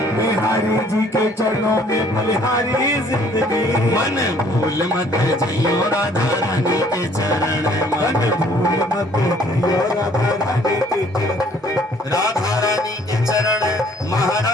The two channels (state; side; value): normal; both; correlation 0.59